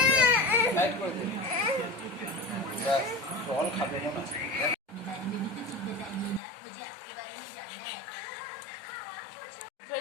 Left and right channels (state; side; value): drops out; right; at 6.4 s